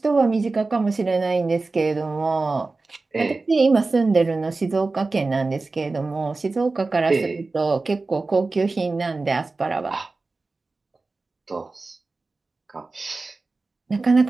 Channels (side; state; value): left; quieter; 3.6 dB